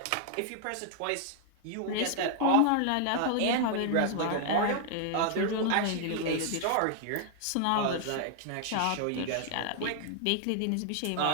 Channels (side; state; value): both; different; correlation 0.00